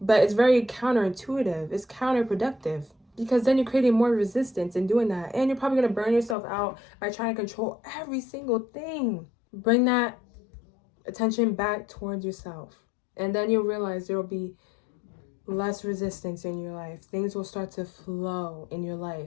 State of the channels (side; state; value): right; drops out; at 6.4 s